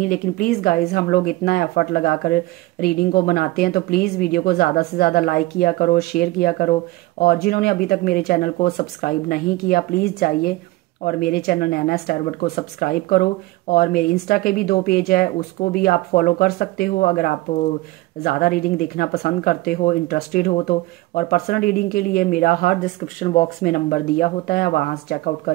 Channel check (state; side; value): quieter; left; 19.5 dB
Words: लेकिन प्लीज़ गाइस, हम लोग इतना एफर्ट लगाकर रीडिंग को बनाते हैं, तो प्लीज़ वीडियो को ज़्यादा से ज़्यादा लाइक किया करो, शेयर किया करो। और जिन्होंने अभी तक मेरे चैनल को सब्सक्राइब नहीं किया, प्लीज़ जाइए और मेरे चैनल नैना स्टारवर्ड को सब्सक्राइब करो। और मेरे इंस्टा के भी 2 पेज है, उसको भी आप फॉलो कर सकते हो अगर आप ज़्यादा रीडिंग देखना पसंद करते हो, इंटरेस्टेड हो तो। और पर्सनल रीडिंग के लिए मेरा हर डिस्क्रिप्शन बॉक्स में नंबर दिया होता है, वहाँ से चेकआउट